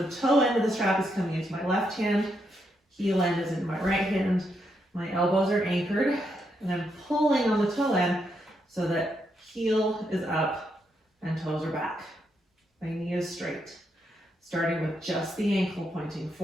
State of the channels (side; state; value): both; normal; correlation 0.79